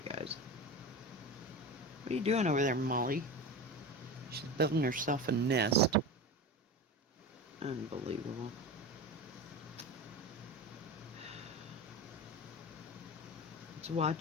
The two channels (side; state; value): both; normal; correlation 0.27